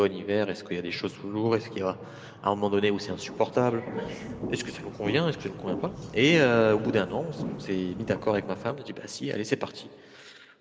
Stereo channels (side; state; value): both; identical; correlation 1.00